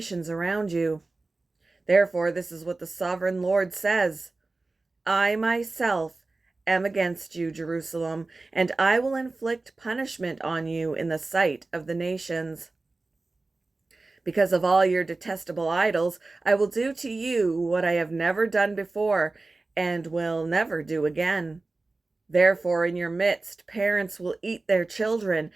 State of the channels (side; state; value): left; quieter; 3.4 dB